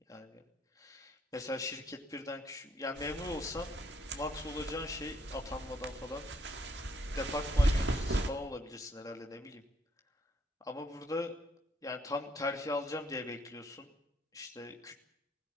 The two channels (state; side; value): normal; both; correlation 0.70